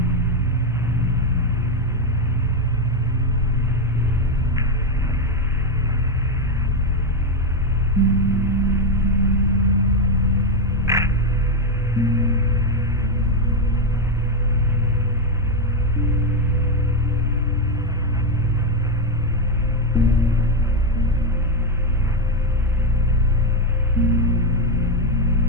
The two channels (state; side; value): normal; both; correlation 0.06